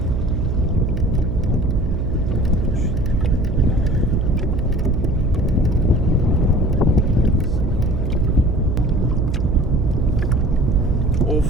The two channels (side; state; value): right; noise; hum, 1 dB below the sound